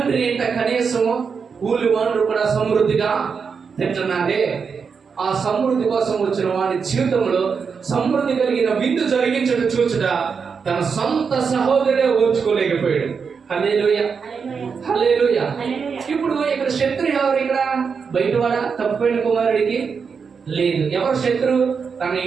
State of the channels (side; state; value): left; quieter; 5.8 dB